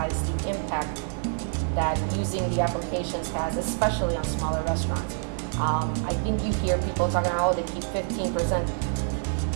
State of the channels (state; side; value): silent; left; 60 dB below the other